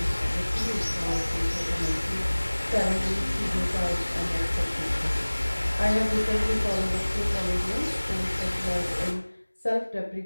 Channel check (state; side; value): inverted; both; correlation -1.00